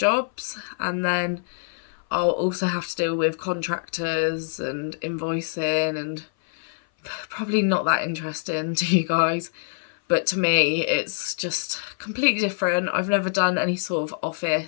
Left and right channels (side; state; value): right; silent; 58 dB below the other